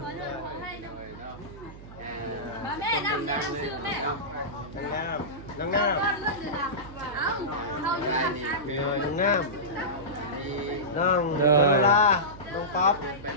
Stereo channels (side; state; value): right; noise; hum, 16 dB below the sound